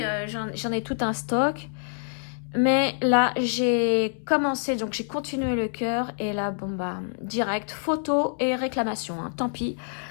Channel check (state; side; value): silent; right; 61 dB below the other